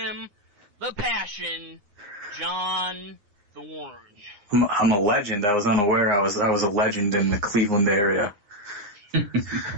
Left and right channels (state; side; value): late; left; 9.7 ms